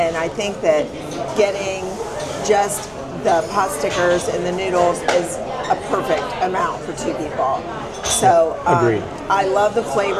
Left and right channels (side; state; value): both; identical; correlation 1.00